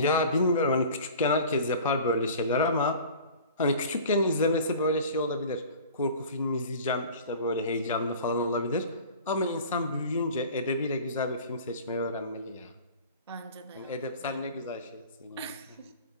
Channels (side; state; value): both; inverted; correlation -0.42